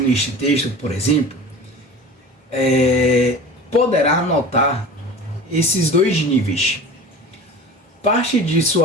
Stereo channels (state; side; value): normal; both; correlation 0.37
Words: este texto, por exemplo, poderá notar esses dois níveis. Parte de